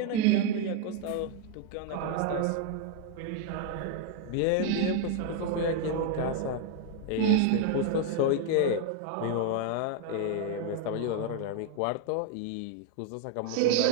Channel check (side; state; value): both; different; correlation 0.00